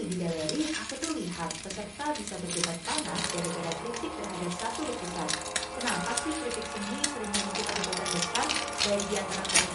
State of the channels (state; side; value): identical; both; correlation 1.00